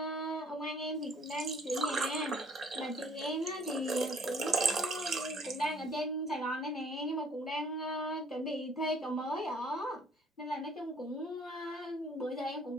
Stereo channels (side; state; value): both; normal; correlation 0.57